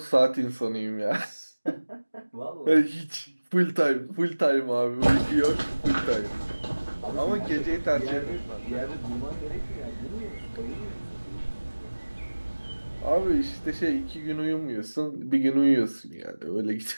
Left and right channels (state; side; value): inverted; both; correlation -1.00